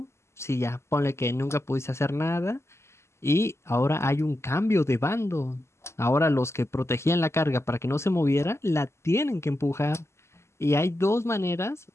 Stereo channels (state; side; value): late; right; 0.13 ms